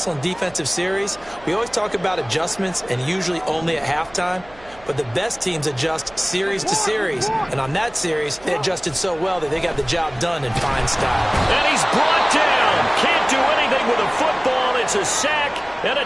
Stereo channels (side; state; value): right; noise; hum, 24 dB below the sound